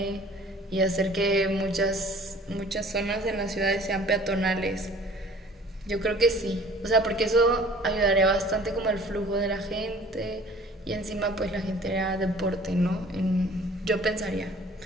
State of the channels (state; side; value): normal; both; correlation 0.50